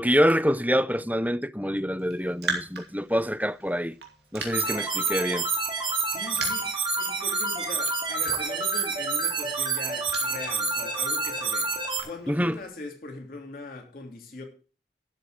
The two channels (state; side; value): normal; both; correlation 0.57